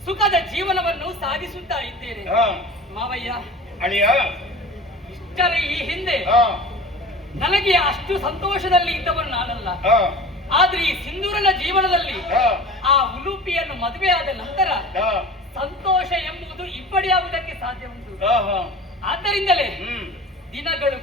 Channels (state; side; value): normal; both; correlation 0.38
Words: ಸುಖದ ಜೀವನವನ್ನು ಸಾಗಿಸುತ್ತಾ ಇದ್ದೇನೆ. ಮಾವಯ್ಯ, ಇಷ್ಟರ ಈ ಹಿಂದೆ ನನಗೆ ಅಷ್ಟು ಸಂತೋಷದಲ್ಲಿ ಇದ್ದವನು ನಾನಲ್ಲ. ಆದ್ರೆ ಈ ಸಿಂಧೂರನ ಜೀವನದಲ್ಲಿ ಆ ಉಲೂಪಿಯನ್ನು ಮದುವೆಯಾದ ನಂತರ ಸಂತೋಷ ಎಂಬುದು ಇಬ್ಬಡಿಯಾಗುವುದಕ್ಕೆ ಸಾಧ್ಯ ಉಂಟು. ಆದ್ದರಿಂದಲೇ ದಿನಗಳು